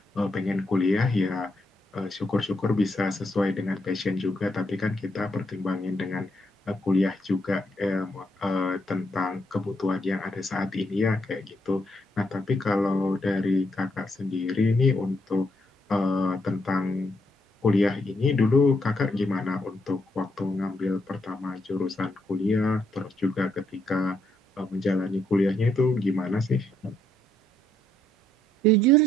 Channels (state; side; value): normal; both; correlation 0.76